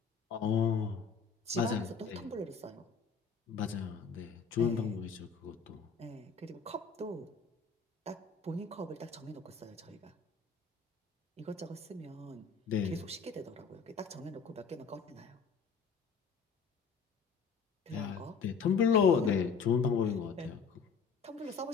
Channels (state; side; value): quieter; right; 5.6 dB